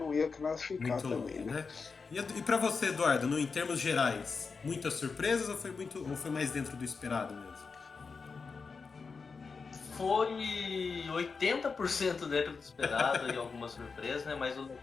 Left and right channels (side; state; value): right; quieter; 4.9 dB